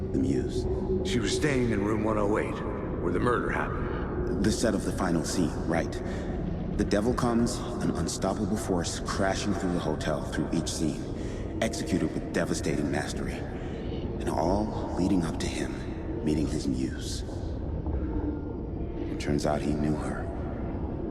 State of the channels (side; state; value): both; identical; correlation 1.00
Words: The muse. She was staying in room 108, where the murder happened. The set of the final scene, right. The devil comes, an unstoppable force crashing through the hotel through each scene, executed with devastating mastery. And all leading up to him meeting his muse. It turns out he knew her.